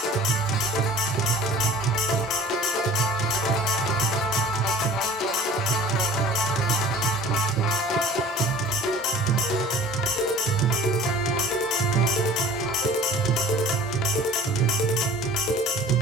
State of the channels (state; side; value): normal; both; correlation 0.45